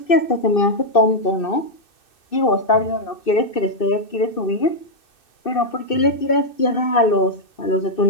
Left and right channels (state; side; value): late; right; 2.6 ms